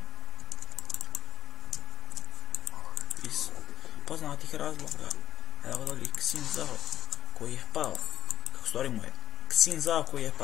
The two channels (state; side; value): quieter; right; 10.9 dB